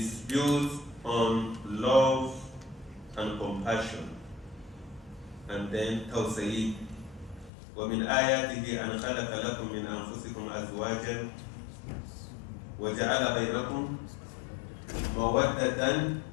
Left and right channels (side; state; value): right; drops out; at 7.5 s